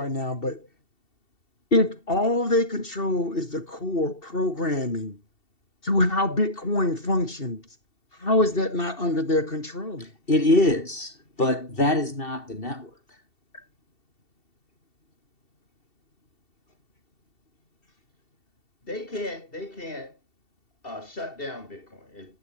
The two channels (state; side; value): late; right; 2.7 ms